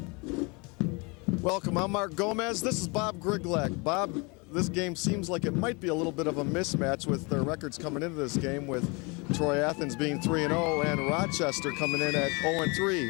Welcome, I'm Mark Gomez. This is Bob Griglak. Bob, this game seems like it might be a little bit of a mismatch with their records coming into this game, with Troy Athens being 3-0 and Rochester coming in at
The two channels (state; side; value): quieter; right; 29.3 dB